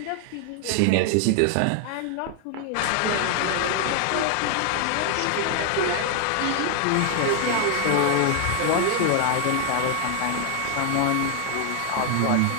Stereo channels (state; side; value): different; both; correlation 0.00